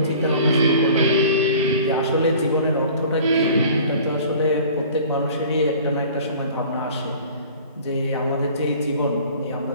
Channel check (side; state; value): both; inverted; correlation -0.46